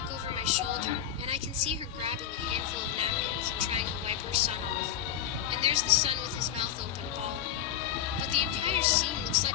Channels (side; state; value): right; quieter; 10.1 dB